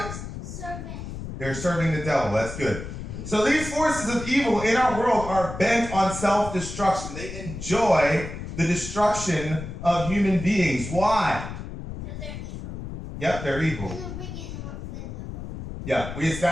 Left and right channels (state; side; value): noise; left; rumble, 9 dB below the sound